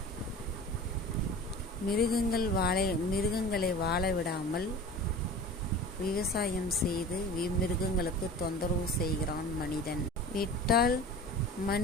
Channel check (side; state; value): both; normal; correlation 0.38